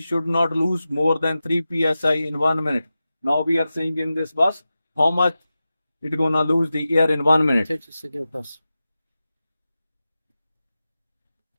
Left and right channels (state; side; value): inverted; both; correlation -0.94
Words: should not lose more than 3 psi in 1 minute. Now we are seeing in this bus how much it gonna lose the air in 1 minute. Take a second bus.